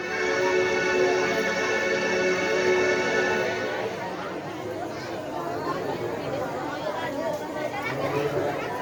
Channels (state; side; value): identical; both; correlation 1.00